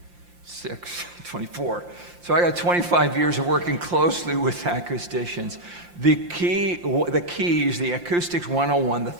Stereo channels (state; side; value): late; left; 5.7 ms